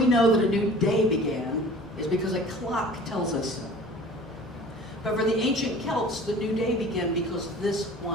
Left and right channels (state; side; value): normal; both; correlation 0.45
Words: know that a new day began is because a clock tells us so. But for the ancient Celts, the new day began because this